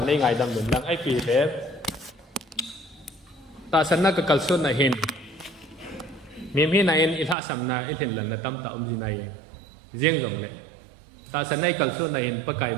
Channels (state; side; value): drops out; left; at 7.4 s